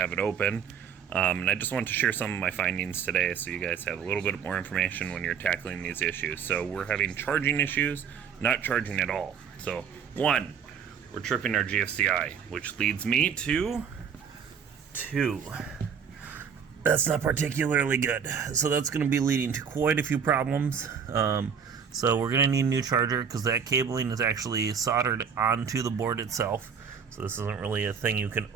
it open. And I just want to share some of my findings today so you guys have a little bit more information when you're tackling these issues. So we're having charging issues, not charging at all. So one, we're tripping our GFCI, which leads me to two. That's not particularly good. So that's going to be leading to quite a few problems. So we're going to need a new charger because that cabling is actually soldered onto the board itself. So this isn't really a thing you can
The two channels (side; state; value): left; quieter; 7.1 dB